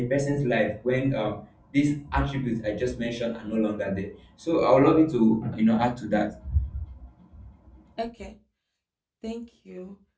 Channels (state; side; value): identical; both; correlation 1.00